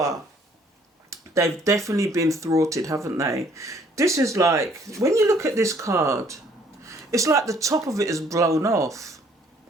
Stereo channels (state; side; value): normal; both; correlation 0.62